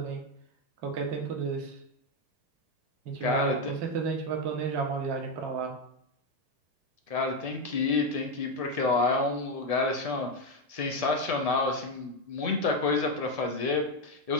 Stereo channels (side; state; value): left; late; 1.7 ms